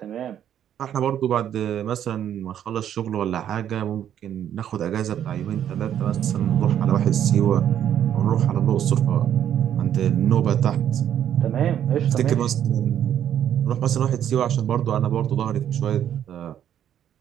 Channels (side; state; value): left; quieter; 10.0 dB